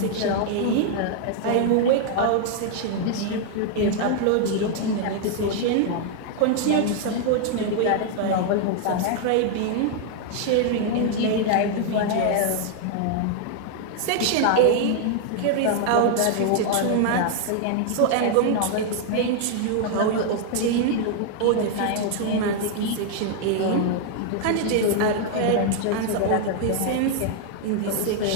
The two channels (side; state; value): both; different; correlation 0.00